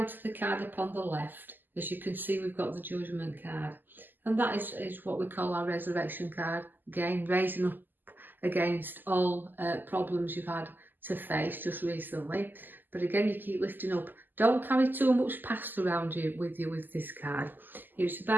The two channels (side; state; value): left; late; 0.089 ms